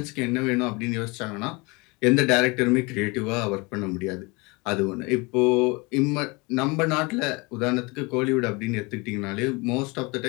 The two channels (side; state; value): right; quieter; 26.7 dB